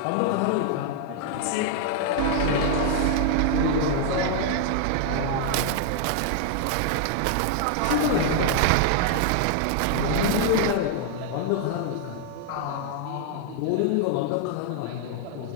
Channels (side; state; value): both; different; correlation 0.00